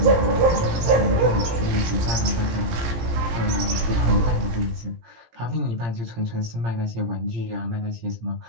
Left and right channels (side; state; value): left; late; 17 ms